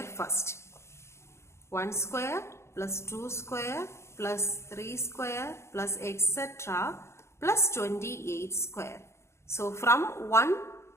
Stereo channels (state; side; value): late; right; 0.13 ms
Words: first. 1 square plus 2 square plus 3 square plus etc. plus 28 square. So from 1